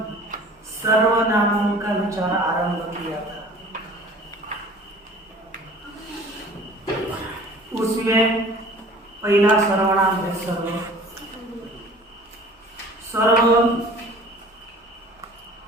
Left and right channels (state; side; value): normal; both; correlation 0.47